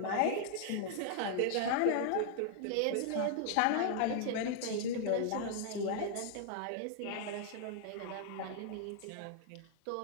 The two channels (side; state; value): both; different; correlation -0.01